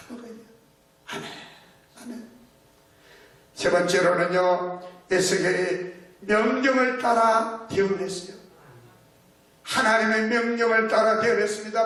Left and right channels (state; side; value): identical; both; correlation 1.00